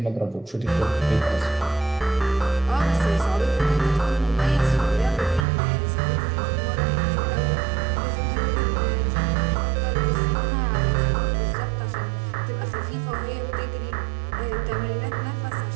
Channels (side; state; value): left; drops out; at 5.5 s